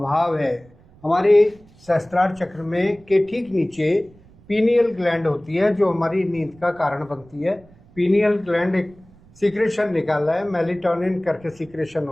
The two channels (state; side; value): noise; right; rumble, 27 dB below the sound